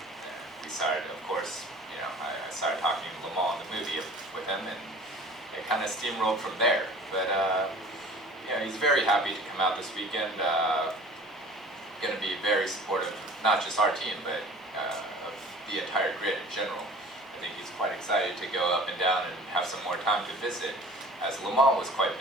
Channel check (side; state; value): both; normal; correlation 0.45